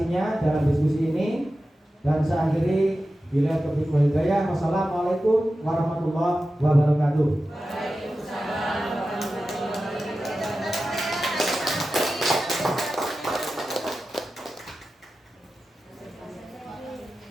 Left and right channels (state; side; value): normal; both; correlation 0.93